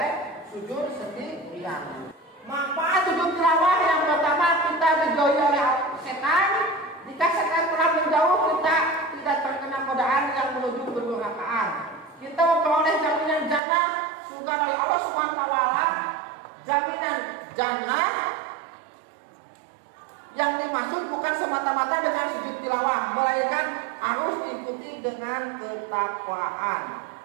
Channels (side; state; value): left; drops out; at 13.6 s